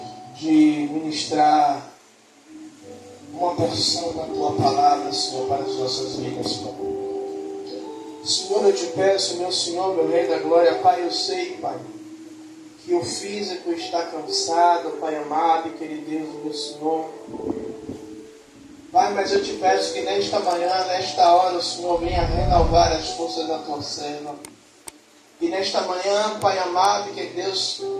de ministrar uma porção da Tua palavra, Senhor, para as nossas vidas, Pai. Senhor, eu te peço, meu Senhor, meu Rei da Glória, Pai, eu sei, Pai, que o físico está cansado, Pai amado e querido Deus, meu Senhor. Pai, mas eu te peço que nesta manhã, nesta hora, o Senhor venha renovar as forças da Tua serva. E nesta manhã, Pai amado, que Deus,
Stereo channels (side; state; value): both; identical; correlation 1.00